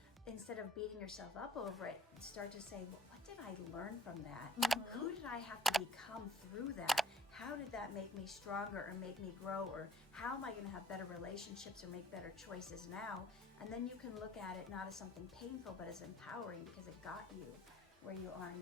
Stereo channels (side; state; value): both; normal; correlation 0.54